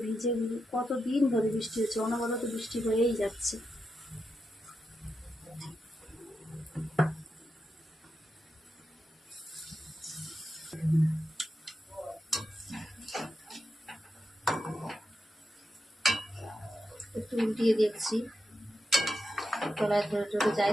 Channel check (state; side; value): normal; both; correlation 0.87